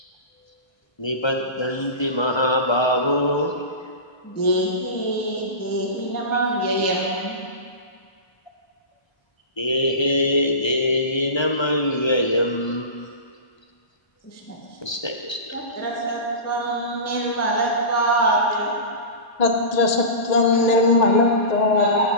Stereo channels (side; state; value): right; late; 1.3 ms